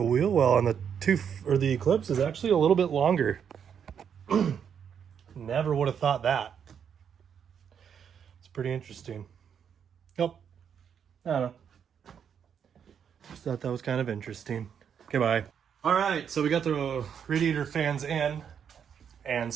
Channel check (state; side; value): quieter; left; 7.8 dB